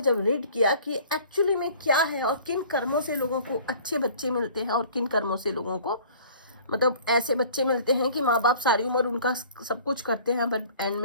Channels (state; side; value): inverted; both; correlation -0.49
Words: जब रीड किया कि एक्चुअली में क्या है और किन कर्मों से लोगों को अच्छे बच्चे मिलते हैं और किन कर्मों से लोगों को मतलब ऐसे बच्चे मिलते हैं कि माँ बाप सारी उम्र उनका सब कुछ करते हैं, बट एंड